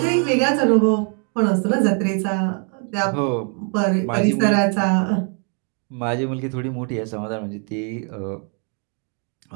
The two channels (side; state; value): left; quieter; 39.1 dB